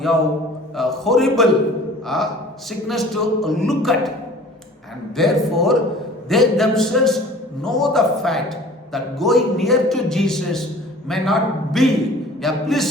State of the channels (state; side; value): normal; both; correlation 0.46